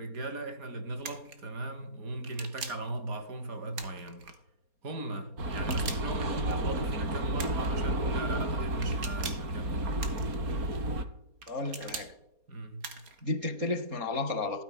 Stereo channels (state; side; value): late; left; 4.2 ms